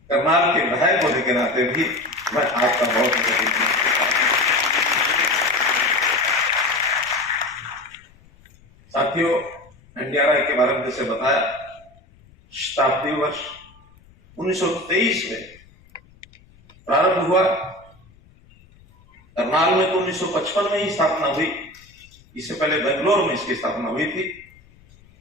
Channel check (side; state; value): left; noise; rumble, 28 dB below the sound